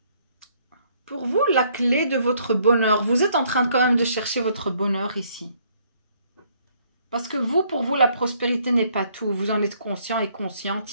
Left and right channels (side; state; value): both; inverted; correlation -0.66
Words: Pour vous, la clé de votre bonheur, vous êtes en train quand même de chercher votre bonheur ici. Parce que vous, pour vous, la prospérité n'est pas tout. Vous en êtes conscient et